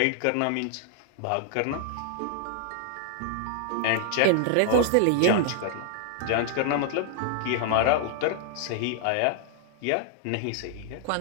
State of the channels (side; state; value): both; different; correlation 0.00